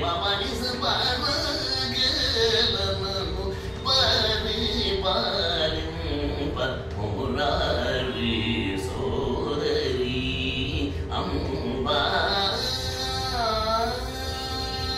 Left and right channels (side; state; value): both; identical; correlation 1.00